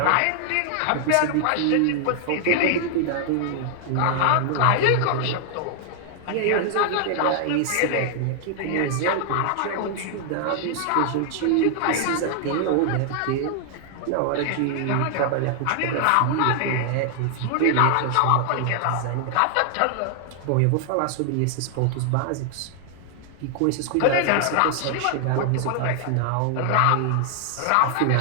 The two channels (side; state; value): both; different; correlation 0.00